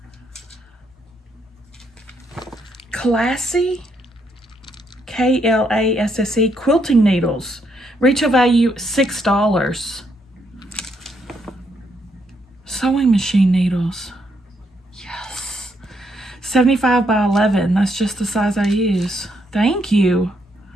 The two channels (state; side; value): normal; both; correlation 0.75